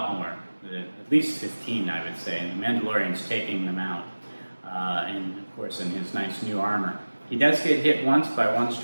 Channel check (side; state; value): both; inverted; correlation -1.00